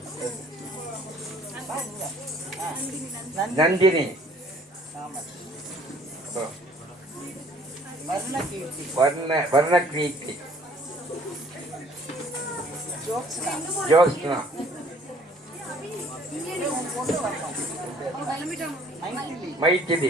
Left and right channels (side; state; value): both; normal; correlation 0.57